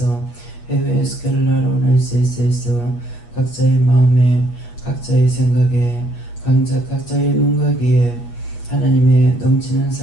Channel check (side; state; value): right; late; 8.4 ms